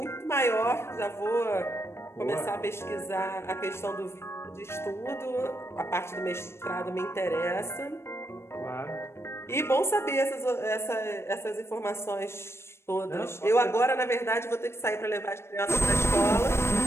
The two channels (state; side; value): late; right; 0.12 ms